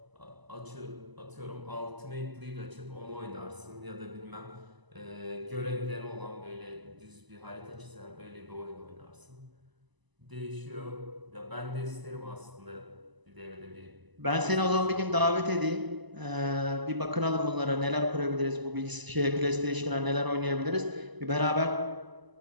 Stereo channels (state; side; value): late; left; 1.0 ms